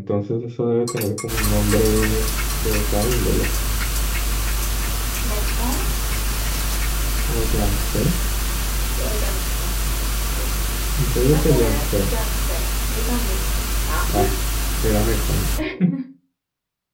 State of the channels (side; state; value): both; identical; correlation 1.00